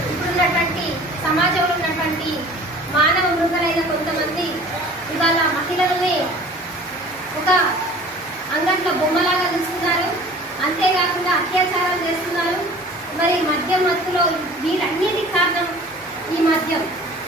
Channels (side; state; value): both; normal; correlation 0.46